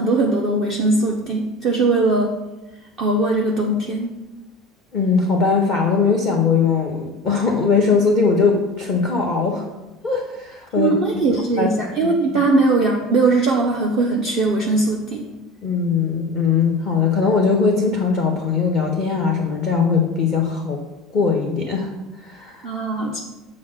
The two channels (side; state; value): both; normal; correlation 0.35